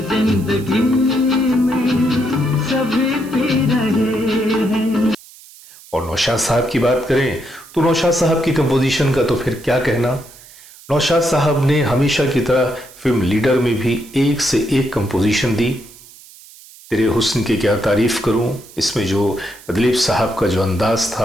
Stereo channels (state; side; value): noise; right; hiss, 21 dB below the sound